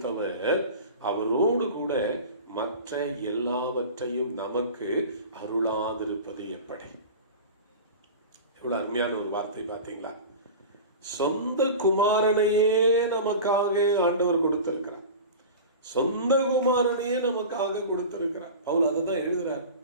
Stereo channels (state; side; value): inverted; both; correlation -0.33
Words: அவரோடு கூட மற்ற எல்லாவற்றையும் நமக்கு அருளாதிருப்பது எப்படி? எவ்வளவு அருமையான ஒரு வார்த்தை பார்த்தீங்களா? சொந்த குமாரனையே நமக்காக ஆண்டவர் கொடுத்திருக்கிறார். சொந்த குமாரனையே நமக்காக கொடுத்திருக்கிறார். பவுல் அதுதான் எழுதுறார்.